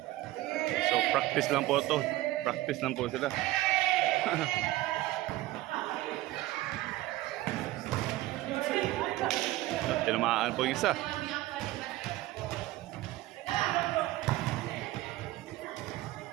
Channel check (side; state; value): left; quieter; 17.0 dB